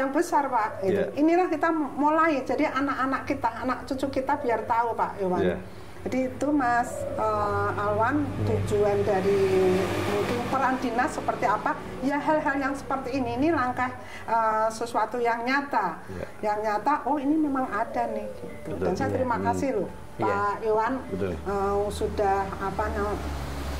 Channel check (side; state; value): both; identical; correlation 1.00